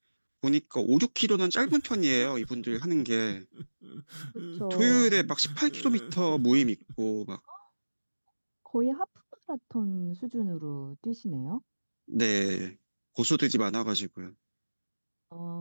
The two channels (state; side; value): inverted; both; correlation -1.00